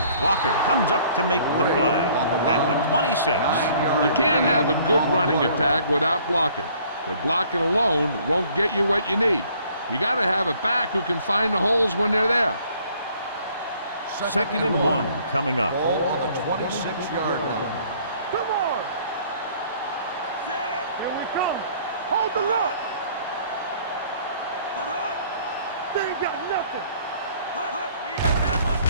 Walker comes up to make the play at the 26. You can't have a good running attack without blocking, but blocking alone won't get you what you need. You got to have a back who can find the holes when they're there. Second and 1 coming up. Ball on the 26-yard line. Come on. Set. Here we come. Hold the look. They ain't got nothing.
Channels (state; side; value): inverted; both; correlation -0.58